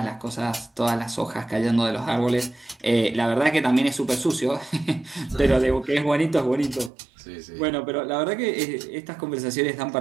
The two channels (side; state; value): left; drops out; at 6.9 s